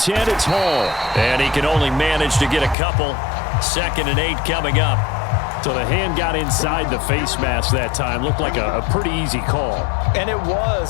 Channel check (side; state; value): right; drops out; at 2.8 s